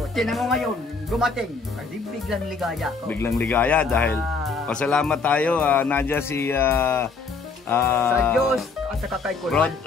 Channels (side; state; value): right; quieter; 4.5 dB